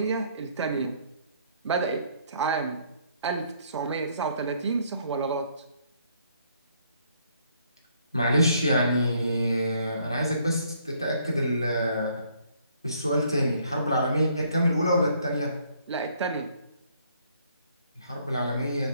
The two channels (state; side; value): inverted; both; correlation -0.66